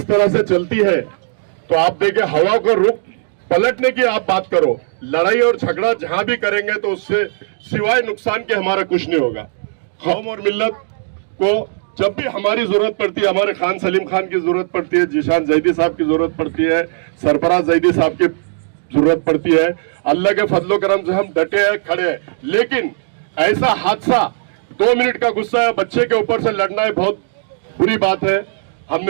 तरह से चलती है तो आप देखें, हवा का रुख पलटने की आप बात करो, लड़ाई और झगड़ा जहां भी करेंगे तो उससे सिवाय नुकसान के हमारा कुछ नहीं होगा। कौम और मिल्लत को जब भी हमारी जरूरत पड़ती है, हमारे खान सलीम खान की जरूरत पड़ती है, जिशान जैदी साहब की जरूरत पड़ती है, सरफराज जैदी साहब की जरूरत पड़ती है, अल्लाह के फजलो करम से हम डटे हैं, खड़े हैं। लेकिन ऐसा हादसा, 2 मिनट का गुस्सा बच्चे के ऊपर से लड़ना है, बहुत बुरी बात है।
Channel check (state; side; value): silent; left; digital silence